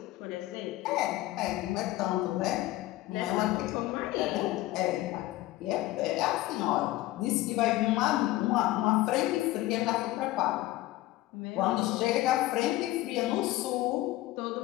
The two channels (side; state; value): right; quieter; 17.1 dB